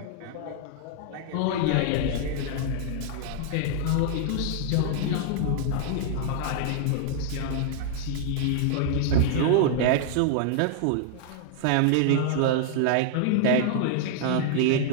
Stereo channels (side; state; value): both; different; correlation -0.01